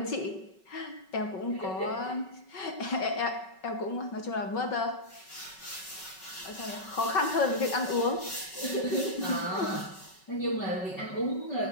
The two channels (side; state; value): right; late; 5.3 ms